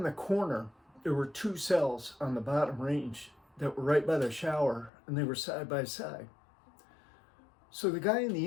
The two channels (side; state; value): right; drops out; at 4.9 s